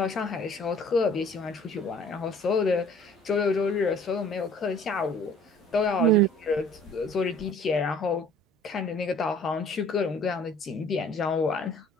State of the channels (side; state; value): both; normal; correlation 0.52